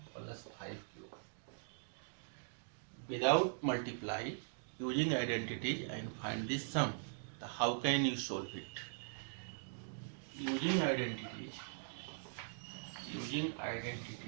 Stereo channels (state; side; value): silent; left; digital silence